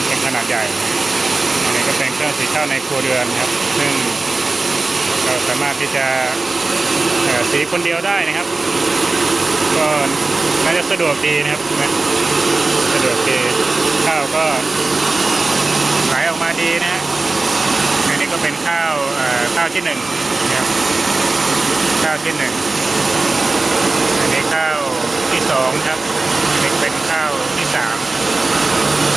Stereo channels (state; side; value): quieter; left; 3.4 dB